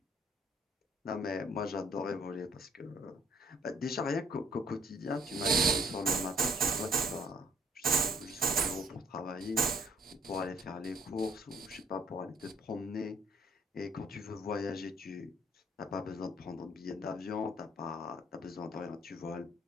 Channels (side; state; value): both; normal; correlation 0.62